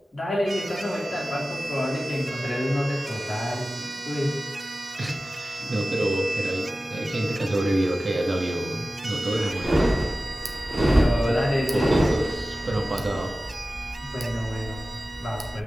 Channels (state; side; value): normal; both; correlation 0.96